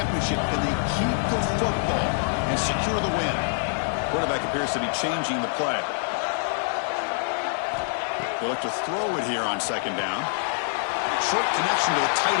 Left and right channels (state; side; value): silent; right; digital silence